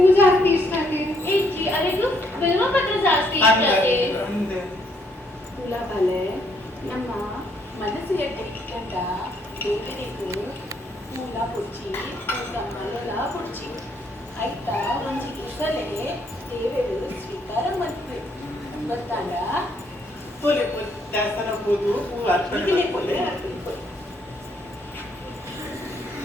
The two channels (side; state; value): both; normal; correlation 0.70